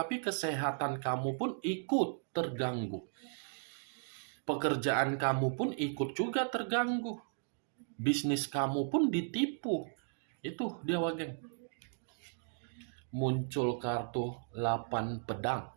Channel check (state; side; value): silent; left; digital silence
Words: kesehatan kamu pun ikut terganggu. Pekerjaan kamu pun ikut juga terganggu. Bisnis kamu pun ditipu. Itu dia, Wak Geng. Muncul kartu 8 pedang.